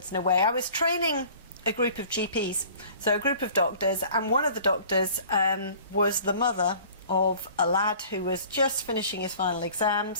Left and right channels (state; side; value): inverted; both; correlation -0.48